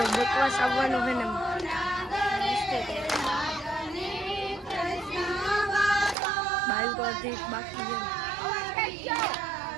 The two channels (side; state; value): left; drops out; at 6.2 s